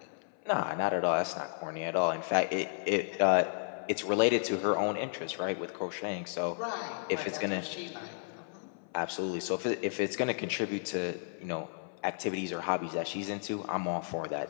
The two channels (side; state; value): right; silent; 56 dB below the other